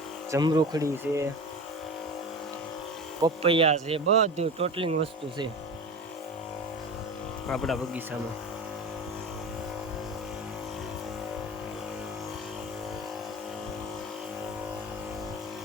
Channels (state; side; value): normal; both; correlation 0.30